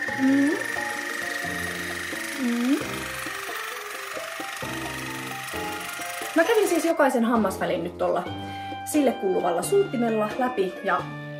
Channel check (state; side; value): identical; both; correlation 1.00